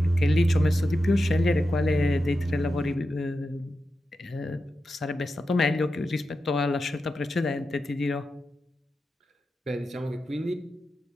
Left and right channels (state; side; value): normal; both; correlation 0.90